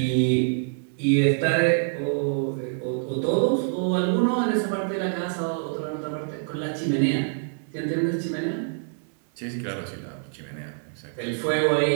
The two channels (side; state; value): left; silent; 61 dB below the other